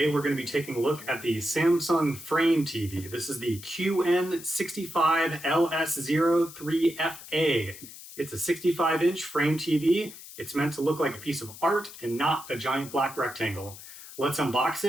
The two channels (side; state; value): left; noise; hiss, 15 dB below the sound